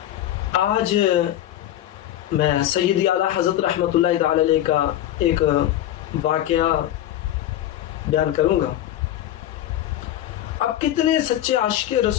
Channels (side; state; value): right; quieter; 12.7 dB